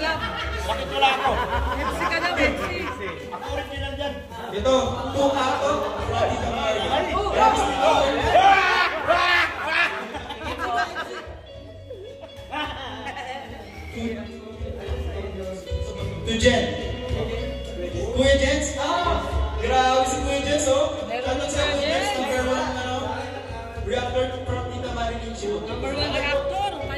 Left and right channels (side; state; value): both; identical; correlation 1.00